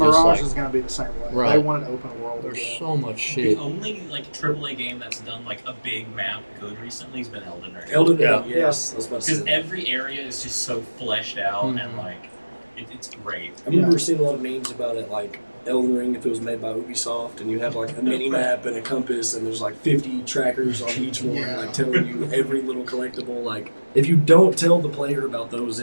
like, is going to be the same way. They Right. want an open world. there's again. so much shit. The only like AAA game that's done like a big map good recently has been Elden Ring. Elden Ring, Yeah. yes. I was about to say Because that. every area is just so fleshed out and Mhm. like it's great. I remember seeing a lot of memes about it, like Elden Ring, if it was made by Ubisoft, and you have like a mini map and a compass, and there's like 50 trackers on each one, Yeah. like telling you every little collectible. Like, if you don't tell the player about those,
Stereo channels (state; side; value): inverted; both; correlation -1.00